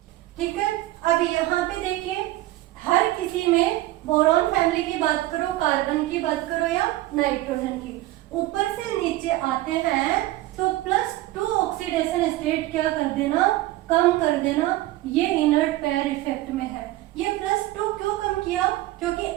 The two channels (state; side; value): quieter; left; 16.8 dB